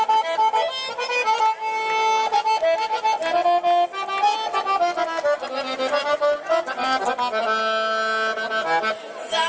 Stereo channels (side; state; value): both; identical; correlation 1.00